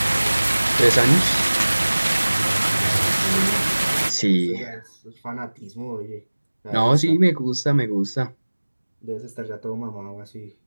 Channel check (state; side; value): inverted; both; correlation -1.00